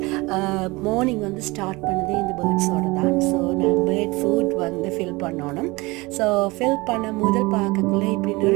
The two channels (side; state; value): left; quieter; 23.2 dB